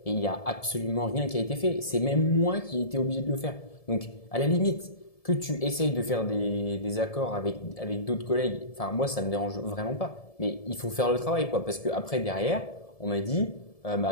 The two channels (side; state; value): right; late; 1.7 ms